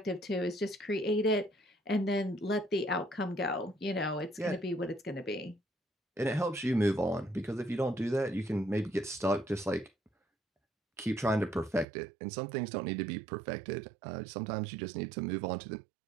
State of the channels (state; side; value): drops out; left; at 11.9 s